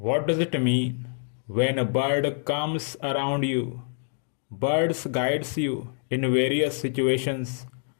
does it mean when a bird comes around you? Birds guides you in various situations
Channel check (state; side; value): silent; right; digital silence